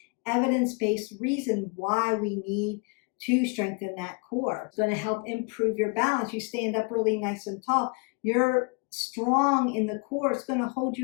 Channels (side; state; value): right; quieter; 32.5 dB